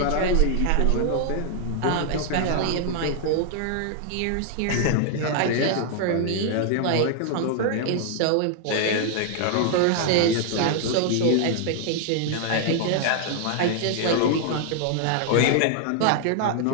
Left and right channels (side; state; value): both; different; correlation 0.00